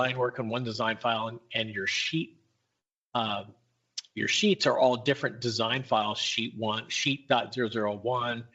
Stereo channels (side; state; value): both; identical; correlation 1.00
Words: work on one design file and your sheets are all different design files, sheet 1, sheet.001,